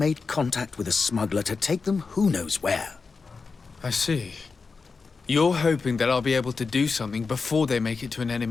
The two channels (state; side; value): quieter; right; 4.6 dB